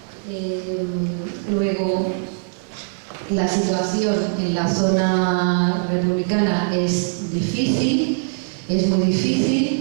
Luego, la situación en la zona republicana es difícil, es muy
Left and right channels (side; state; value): left; silent; digital silence